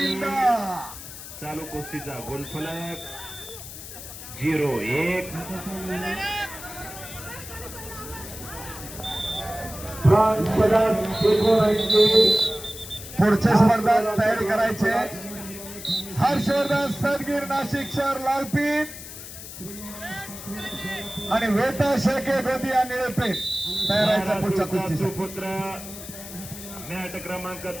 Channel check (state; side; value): noise; left; hiss, 12 dB below the sound